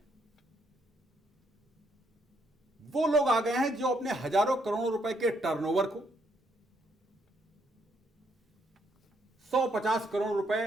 वो लोग आ गए हैं जो अपने हजारों करोड़ों रुपए के टर्नओवर को 150 करोड़ रुपए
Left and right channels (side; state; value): both; normal; correlation 0.73